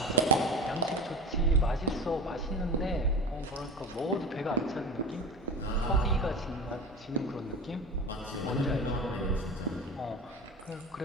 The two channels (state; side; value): normal; both; correlation 0.32